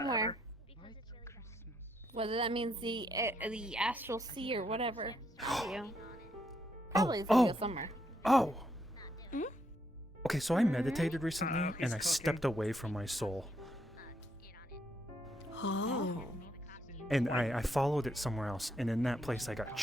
Whether that means the astral sea or whatever. You know. Probably it's gonna go somewhere. Oh! Okay, so I meditated recently and I stepped away from my soul. Oh. And I followed it somewhere else, and in that place I got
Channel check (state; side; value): normal; both; correlation 0.76